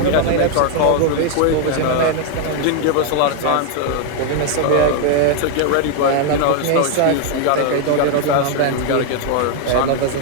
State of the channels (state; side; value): different; both; correlation 0.00